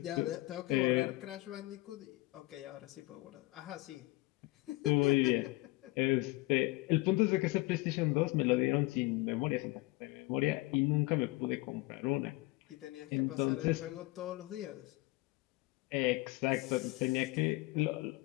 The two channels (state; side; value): quieter; right; 21.7 dB